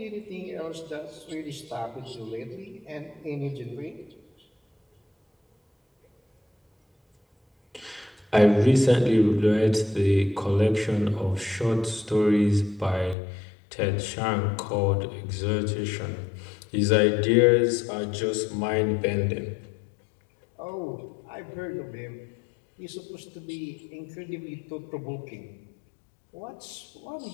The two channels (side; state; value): right; drops out; at 13.2 s